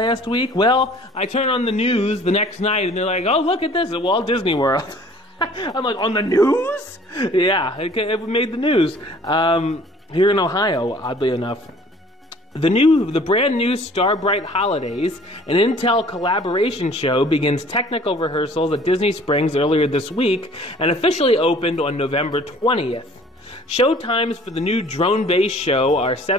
week. Well, I turn on the news the next night and they're like, oh, look at this at Walt Disney World. I'm like, on the news? Yeah, it made the news. Here in Ohio, oddly enough. The brand new Starbright Holidays, an Intel collaboration show, begins technical rehearsals at Disney Springs earlier this week and officially opened on November 20th. Show times for the new drone-based show are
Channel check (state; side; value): normal; both; correlation 0.52